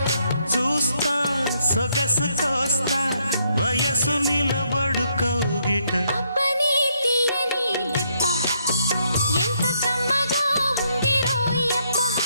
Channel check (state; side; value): inverted; both; correlation -0.74